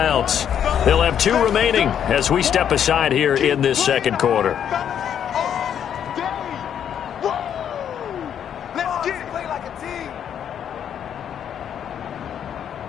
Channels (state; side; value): quieter; right; 9.0 dB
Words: They'll have 2 remaining as we step aside here in this second quarter.